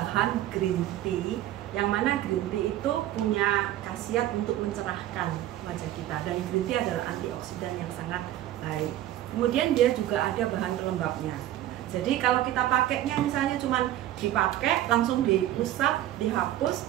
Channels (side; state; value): left; quieter; 13.4 dB